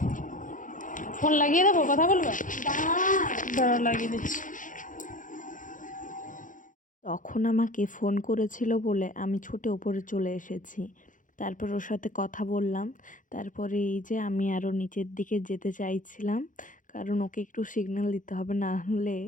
ফোন লাগিয়ে দেবো, কথা বলবে। দাও। দাঁড়াও লাগিয়ে দিচ্ছি। তখন আমাকে ফোন করেছিল বলে আমি ছুটে ওপরে চলে এসেছি। তারপর ওর সাথে কথা বললাম। তারপরে এই যে আমি আরও নিচের দিকে যেতে চাইছিলাম, কারণ ওকে একটু সিগন্যাল দিতে হবে, না হলে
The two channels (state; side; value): late; right; 0.38 ms